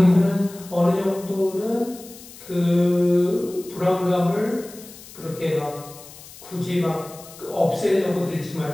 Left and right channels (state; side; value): noise; left; hiss, 18 dB below the sound